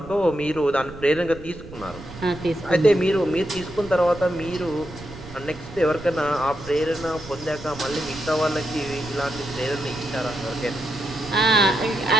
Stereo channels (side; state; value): right; noise; rumble, 15 dB below the sound